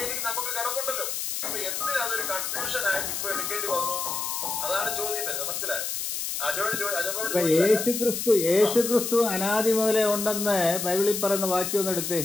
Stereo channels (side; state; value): left; noise; hiss, 3 dB below the sound